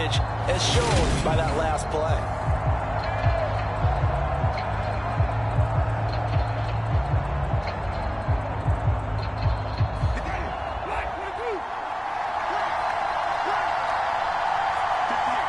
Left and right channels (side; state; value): both; identical; correlation 1.00